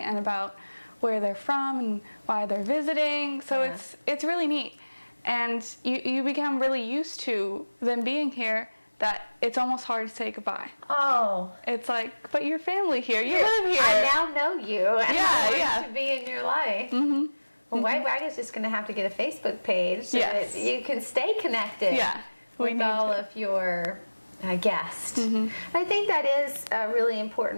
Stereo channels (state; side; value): inverted; both; correlation -1.00